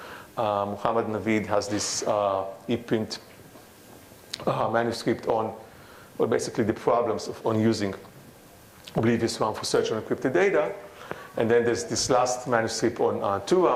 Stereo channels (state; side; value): identical; both; correlation 1.00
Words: Muhammad Naveed has this e-print manuscript on, well, basically the problems on using Oblivious RAM for search on encrypted data. And then there's this last manuscript on